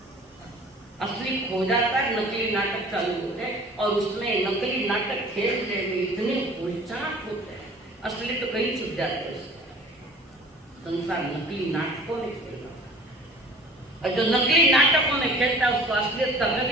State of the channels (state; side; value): normal; both; correlation 0.46